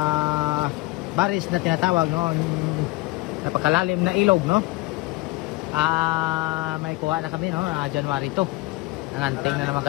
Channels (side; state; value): right; quieter; 20.6 dB